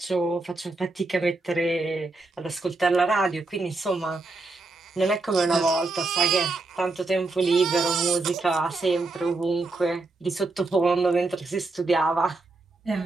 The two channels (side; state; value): left; quieter; 3.3 dB